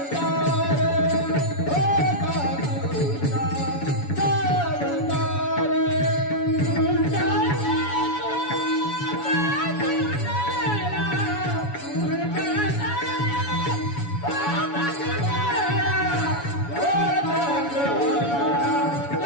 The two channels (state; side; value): late; right; 7.1 ms